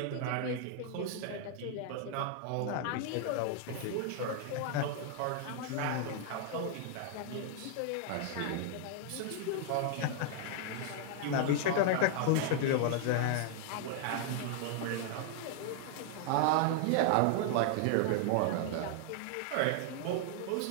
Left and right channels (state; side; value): different; both; correlation 0.00